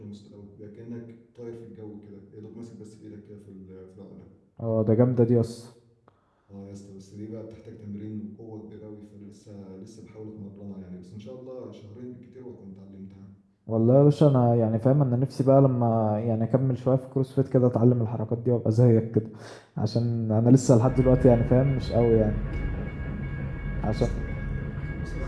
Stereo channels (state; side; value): identical; both; correlation 1.00